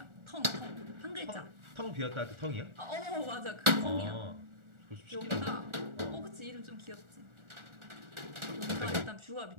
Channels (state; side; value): late; left; 1.4 ms